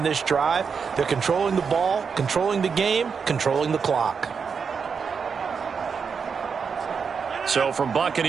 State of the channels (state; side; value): quieter; left; 6.0 dB